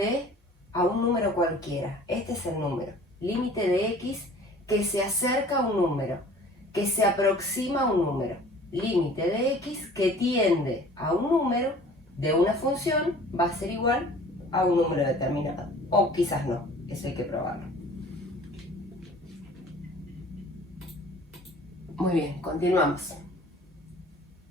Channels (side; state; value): both; normal; correlation 0.48